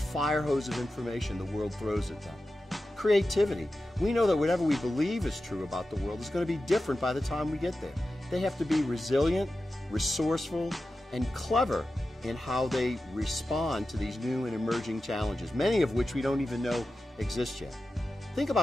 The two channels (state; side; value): normal; both; correlation 0.93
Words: hose of information the world throws at them. Creativity. We know that whatever we believe is true about the world is going to be different by the time we get there. They have to be resilient, resourceful, and clever in how they respond to these new and emerging challenges, many of which we don't even know exist yet. Think